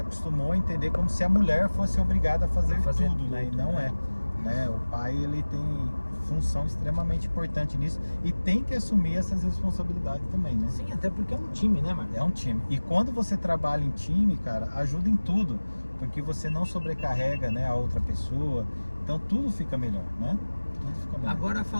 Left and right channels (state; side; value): inverted; both; correlation -1.00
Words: a entender como se a mulher fosse obrigada a fazer tudo, né? E não né? né? O pai, ele tem função extremamente importante nisso e tem que assumir essas responsabilidades também, né? Sim, até porque é um time, né, Marcos? É um time. E quando você trabalha em time, cara, ajuda em tudo, porque você não sobrecarrega, né, a outra pessoa. Então tudo fica melhor, né? Tudo fica melhor. Agora,